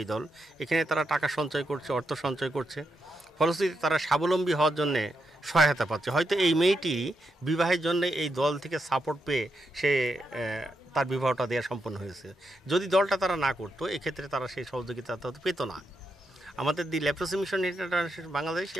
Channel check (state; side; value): normal; both; correlation 0.84